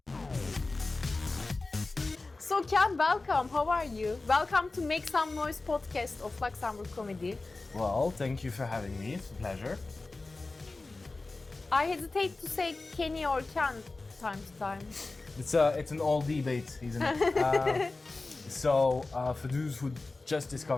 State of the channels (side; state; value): right; quieter; 3.4 dB